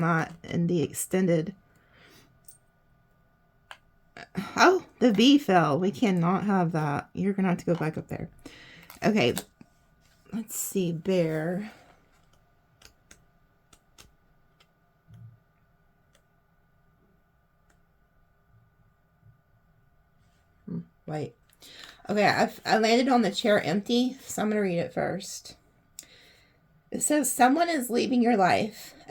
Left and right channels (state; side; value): identical; both; correlation 1.00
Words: that in the extended. Oh, the V fell. We cannot have that. You're going to have to go back up there. Okay, let's see, bear. Wait. Okay, I landed on the chair empty, so I'm going to read it first. It says, someone is leaving your life.